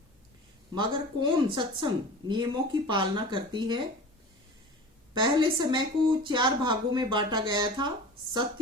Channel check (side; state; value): both; normal; correlation 0.37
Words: मगर कौन सत्संग नियमों की पालना करती है। पहले समय को 4 भागों में बांटा गया था,